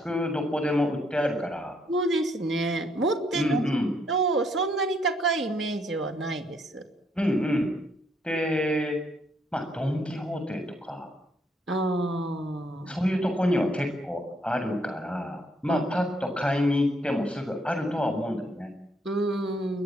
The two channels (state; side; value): normal; both; correlation 0.71